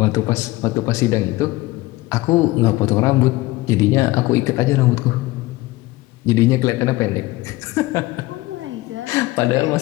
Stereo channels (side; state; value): right; quieter; 19.4 dB